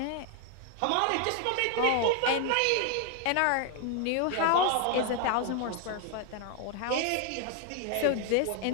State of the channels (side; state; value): both; different; correlation 0.00